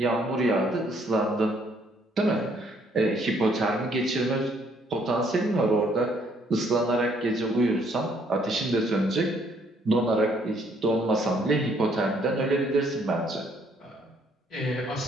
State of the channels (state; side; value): normal; both; correlation 0.66